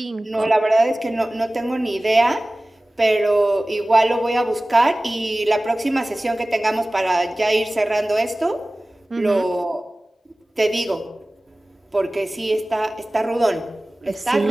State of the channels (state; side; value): normal; both; correlation 0.98